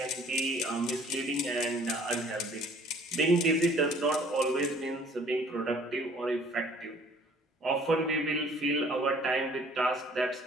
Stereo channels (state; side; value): normal; both; correlation 0.55